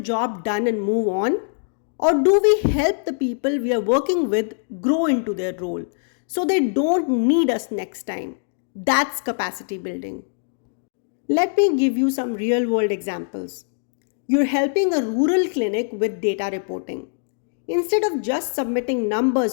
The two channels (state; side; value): silent; right; digital silence